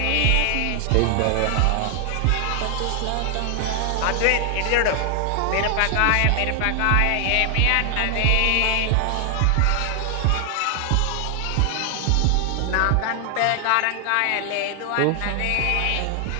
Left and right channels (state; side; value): different; both; correlation 0.00